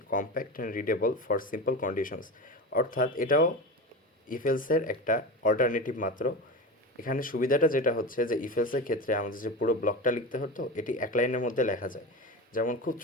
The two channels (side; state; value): both; normal; correlation 0.26